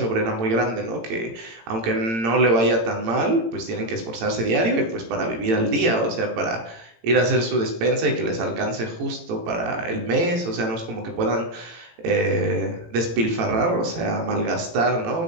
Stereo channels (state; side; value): late; left; 18 ms